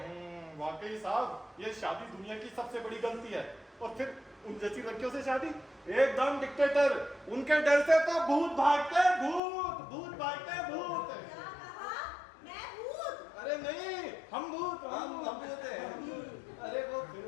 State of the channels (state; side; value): drops out; right; at 9.4 s